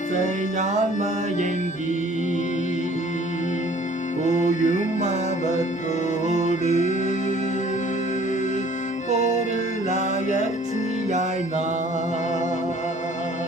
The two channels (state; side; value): normal; both; correlation 0.54